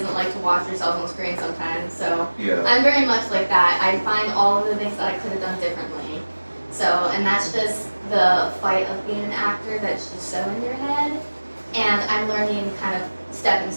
like to watch themselves on screen sometimes. So I'm very much like that. I find all of the things that I could have done differently. So, and that's just the fight of being an actor that's just so in your head. And I'm learning kind of stepping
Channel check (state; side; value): inverted; both; correlation -1.00